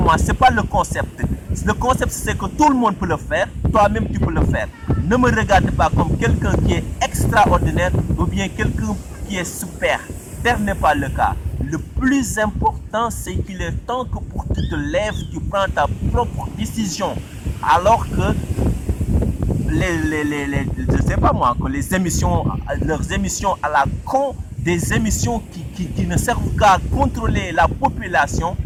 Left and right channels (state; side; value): identical; both; correlation 1.00